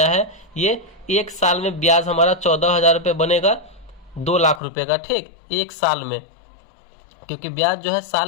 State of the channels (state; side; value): drops out; right; at 4.6 s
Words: है, ये एक साल में ब्याज हमारा 14,000 रुपये बनेगा 2 लाख रुपये का, ठीक, एक साल में। क्योंकि ब्याज जो है